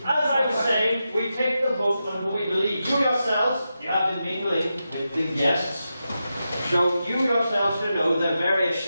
As I was saying, we take the vote on who we believe. You yourselves, you have been mingling with the guests. So you yourselves should know the various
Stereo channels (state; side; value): inverted; both; correlation -0.89